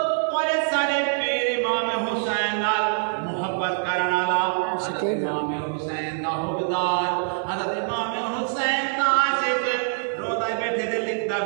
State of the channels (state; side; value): silent; left; digital silence